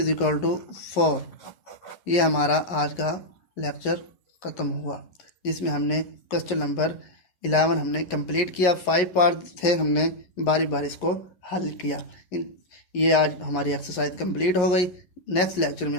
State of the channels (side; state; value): right; late; 11 ms